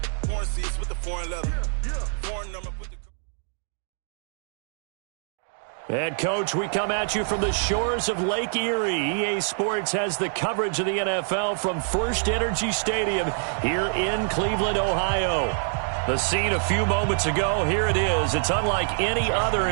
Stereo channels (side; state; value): left; silent; digital silence